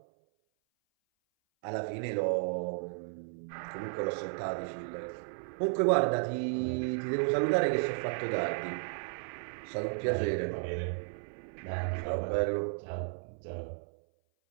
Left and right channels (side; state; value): left; silent; 55 dB below the other